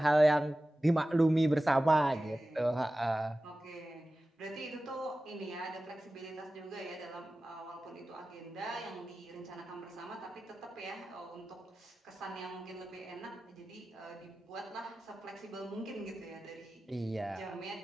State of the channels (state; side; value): normal; both; correlation 0.95